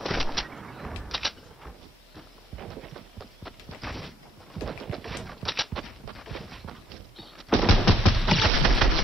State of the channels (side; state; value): both; normal; correlation 0.68